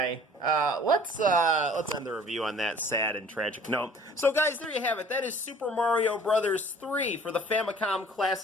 let's end the review on that sad and tragic note. So, guys, there you have it. That is Super Mario Brothers 3 for the Famicom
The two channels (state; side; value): normal; both; correlation 0.51